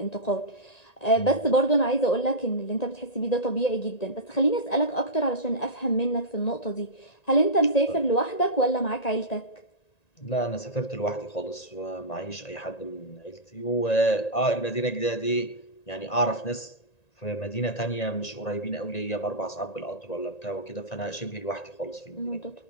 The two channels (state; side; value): late; right; 1.9 ms